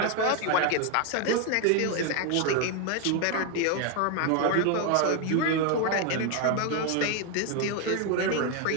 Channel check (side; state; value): both; different; correlation 0.01